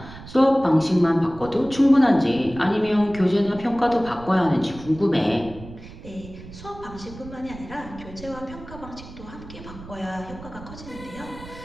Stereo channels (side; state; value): right; noise; rumble, 16 dB below the sound